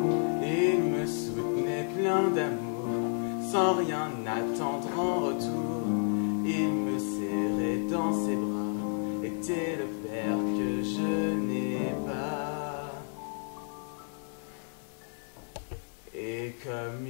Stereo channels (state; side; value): silent; right; 57 dB below the other